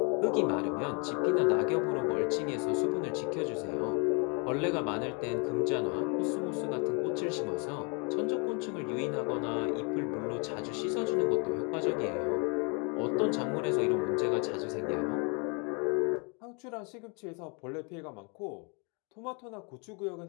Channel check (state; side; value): quieter; right; 34.1 dB